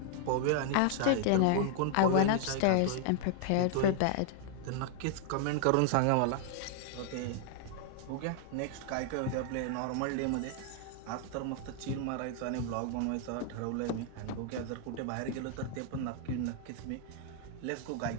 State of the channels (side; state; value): both; different; correlation -0.01